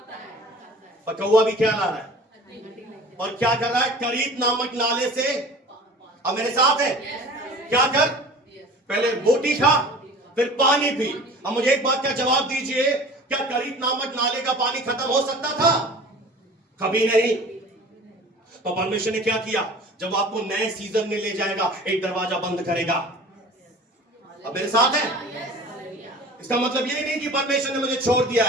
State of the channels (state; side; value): normal; both; correlation 0.42